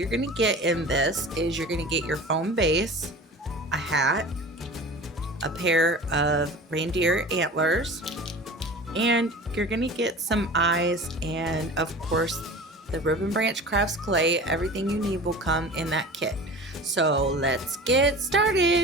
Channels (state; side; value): normal; both; correlation 0.37